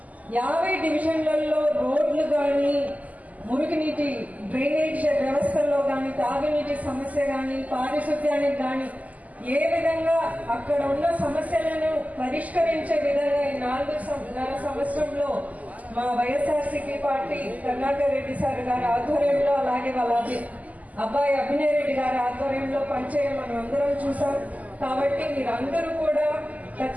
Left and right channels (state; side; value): late; left; 0.076 ms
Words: 50 డివిజన్లలో రోడ్లు కానీ, మురుగునీటి డ్రైనేజ్ వ్యవస్థల్లో కానీ, తాగునీటి సమస్య కానీ, పారిశుద్ధ్యానికి కానీ ఏ విధంగా అక్కడ ఉన్న సమస్యలను పరిష్కరించే విధంగా ఈ 4.5 సంవత్సరంలో మా వైఎస్ఆర్సీపీ పార్టీ కరుణాకర్ రెడ్డి సార్ గారి ఆధ్వర్యంలో, అలాగే వాళ్ళ అబ్బాయి అభినయ్ రెడ్డి గారి ఆధ్వర్యంలో పనిచేయడం మనం అందరం చూసాం. కాబట్టి మీరందరూ కూడా